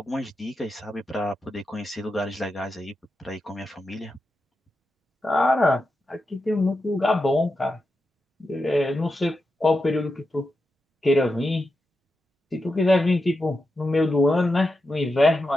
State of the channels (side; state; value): both; normal; correlation 0.88